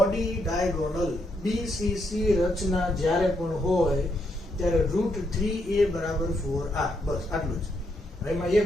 ડાયગોનલ BCC રચના જ્યારે પણ હોય ત્યારે √3a બરાબર 4r. બસ આટલું જ. એમાં a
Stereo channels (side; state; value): both; normal; correlation 0.78